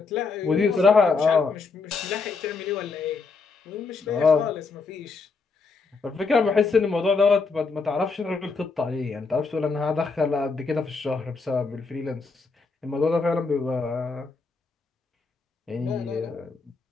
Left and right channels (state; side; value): quieter; right; 4.4 dB